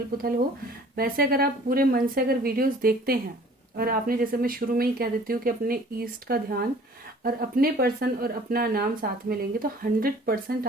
पुथल हो, वैसे अगर आप पूरे मन से अगर वीडियोस देखते हैं, और आपने, जैसे मैं शुरू में ही कह देती हूँ कि अपने ईस्ट का ध्यान और अपने पर्सन और अपना नाम साथ में लेंगे, तो 100%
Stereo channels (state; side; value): normal; both; correlation 0.51